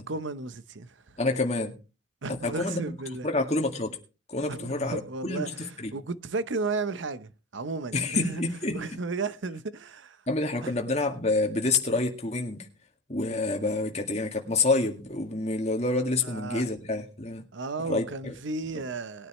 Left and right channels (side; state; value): both; normal; correlation 0.29